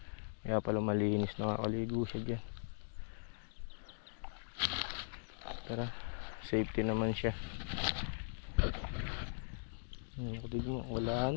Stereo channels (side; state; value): right; silent; digital silence